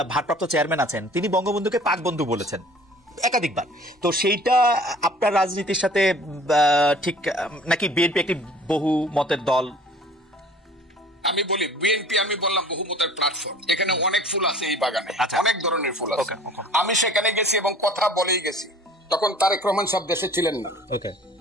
ভারপ্রাপ্ত চেয়ারম্যান আছেন, তিনি বঙ্গবন্ধুকে পাক বন্ধু বলেছেন। একাধিকবার। তো সেইটা আপনার রাজনীতির সাথে ঠিক নাকি বিএনপি একটি বহু মতের দল? আমি বলি বিএনপি, আমি বললাম বহুমতের প্ল্যাটফর্ম, এখানে অনেক ফুল আছে এই বাগানে, অনেক ধরনের ফুল আছে। আমি সেখানে গেছি এবং কথা বলেই গেছি, তখন তারেক রহমান সব দেশে ছিলেন না।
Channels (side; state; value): both; normal; correlation 0.49